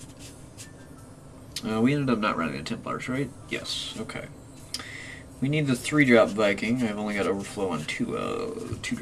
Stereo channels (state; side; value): identical; both; correlation 1.00